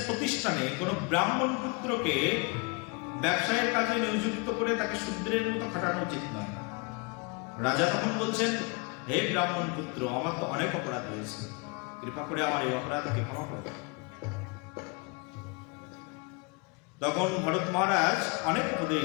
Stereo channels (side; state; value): right; quieter; 30.5 dB